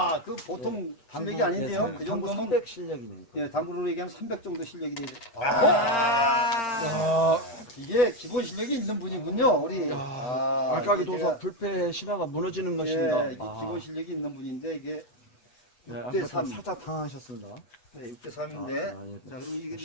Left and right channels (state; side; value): late; right; 8.3 ms